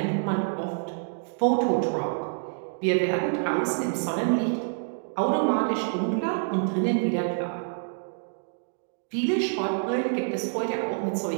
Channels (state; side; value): silent; left; digital silence